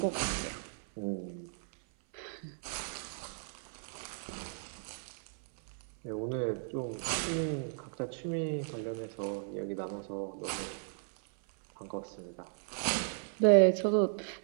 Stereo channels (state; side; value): silent; left; 54 dB below the other